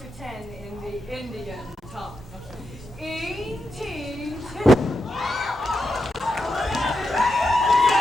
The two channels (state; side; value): normal; both; correlation 0.86